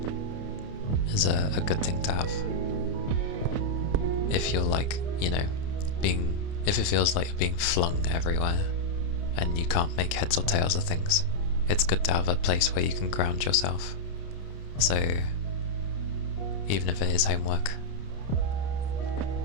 is a good thing to have. If you're like, you know, if it feels like you're being flung everywhere and you can't make heads or tails of things, it's good to have a place where you can ground yourself. So even if it is homework,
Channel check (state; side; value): late; right; 30 ms